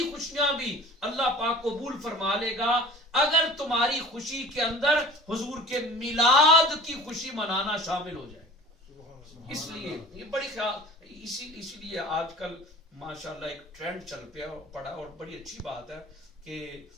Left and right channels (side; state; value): both; normal; correlation 0.43